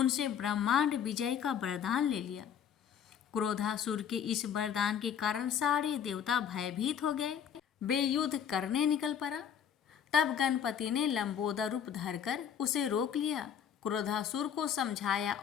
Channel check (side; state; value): right; quieter; 8.4 dB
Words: ब्रह्मांड विजय का वरदान ले लिया। क्रोधासुर के इस वरदान के कारण सारे देवता भयभीत हो गए। वे युद्ध करने निकल पड़ा। तब गणपति ने लंबोदर रूप धरकर उसे रोक लिया। क्रोधासुर को समझाया